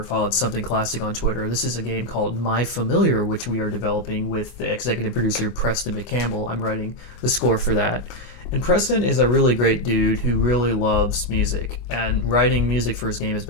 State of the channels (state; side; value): late; right; 25 ms